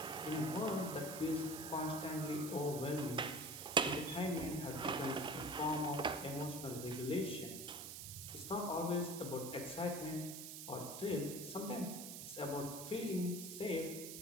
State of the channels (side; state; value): right; noise; hiss, 8 dB below the sound